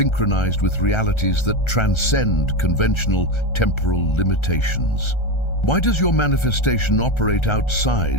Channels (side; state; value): right; late; 1.3 ms